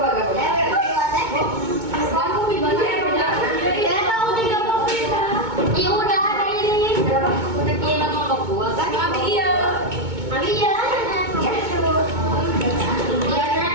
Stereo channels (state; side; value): late; left; 2.2 ms